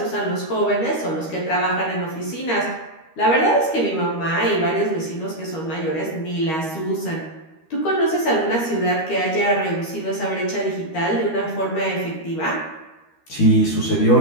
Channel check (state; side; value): late; right; 13 ms